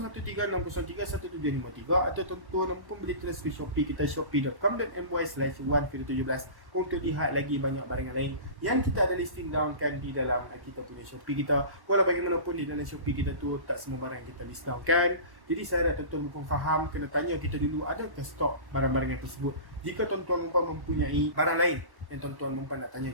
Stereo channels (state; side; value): late; left; 1.1 ms